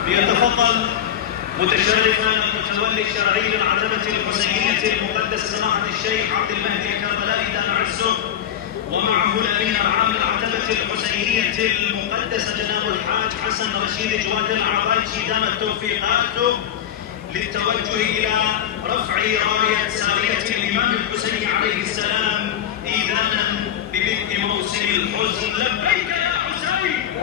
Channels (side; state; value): right; quieter; 10.1 dB